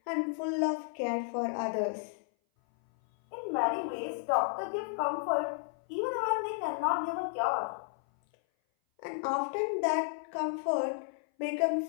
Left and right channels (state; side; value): silent; right; 56 dB below the other